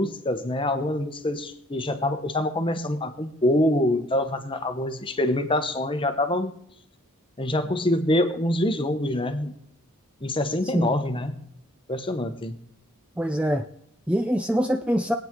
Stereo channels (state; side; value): normal; both; correlation 0.62